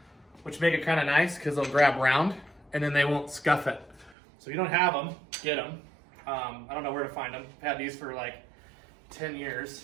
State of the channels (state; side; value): drops out; left; at 4.2 s